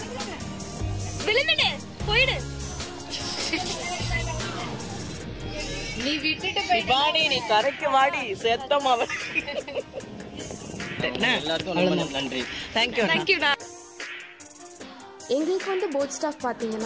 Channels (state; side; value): identical; both; correlation 1.00